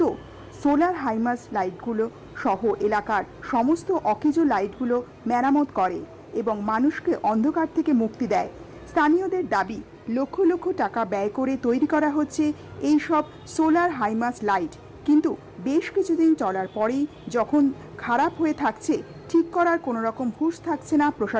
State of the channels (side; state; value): both; identical; correlation 1.00